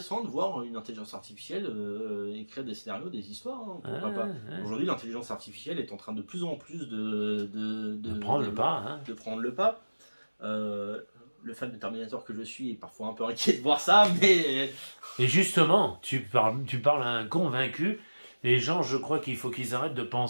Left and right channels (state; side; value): inverted; both; correlation -1.00